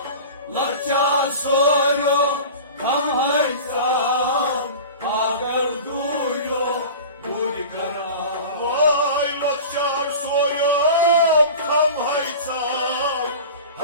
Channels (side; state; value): both; inverted; correlation -0.35